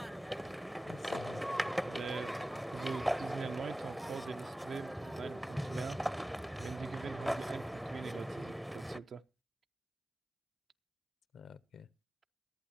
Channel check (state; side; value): normal; both; correlation 0.96